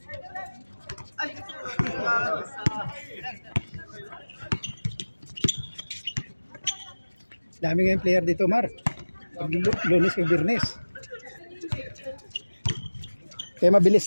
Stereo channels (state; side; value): inverted; both; correlation -1.00